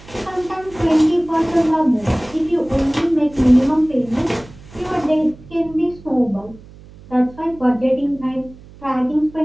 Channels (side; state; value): right; noise; hum, 21 dB below the sound